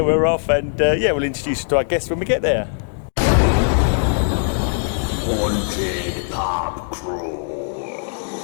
we're off and we'll introduce you to our guests when we get there. Haunted Pub Crawl.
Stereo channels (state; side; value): silent; right; digital silence